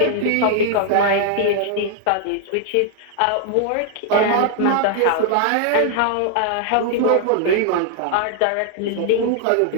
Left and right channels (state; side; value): different; both; correlation 0.00